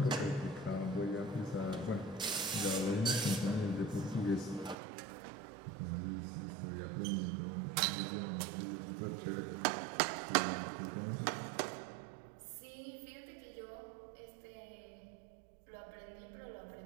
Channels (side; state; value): left; drops out; at 4.8 s